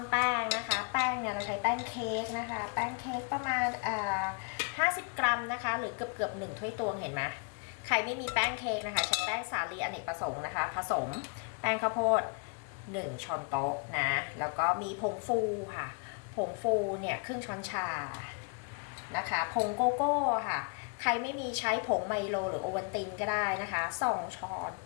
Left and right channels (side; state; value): right; quieter; 38.5 dB